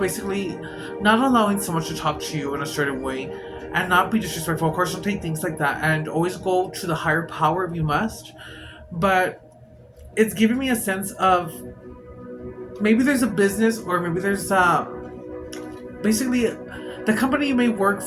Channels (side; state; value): both; identical; correlation 1.00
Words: not allowing someone to talk to you in a certain way and not be disrespectful. Of course, don't take things like that, and always go to the higher power if you must. But it's giving me a sense of maybe there's a business, or maybe there's basically the company you may work